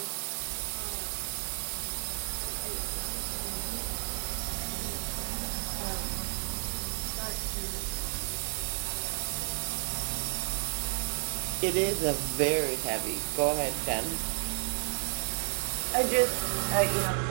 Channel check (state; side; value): silent; left; digital silence